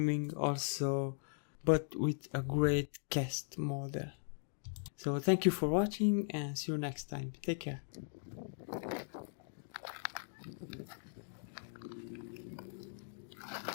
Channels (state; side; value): silent; right; digital silence